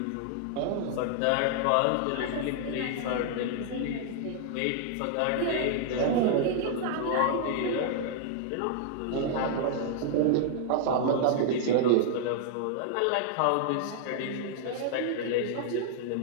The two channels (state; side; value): different; both; correlation 0.00